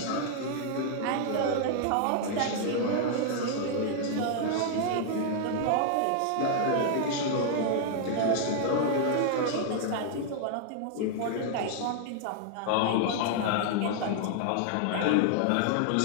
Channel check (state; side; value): different; both; correlation 0.00